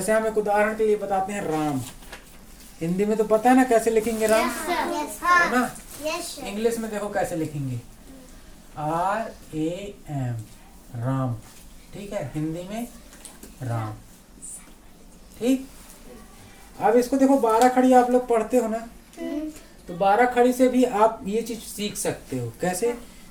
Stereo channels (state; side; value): identical; both; correlation 1.00